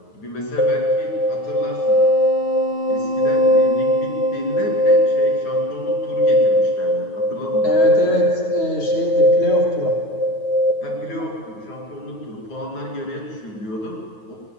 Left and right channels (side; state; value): right; late; 9.3 ms